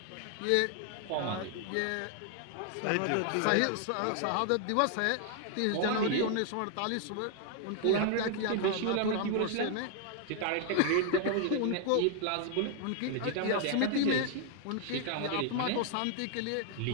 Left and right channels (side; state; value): both; different; correlation 0.00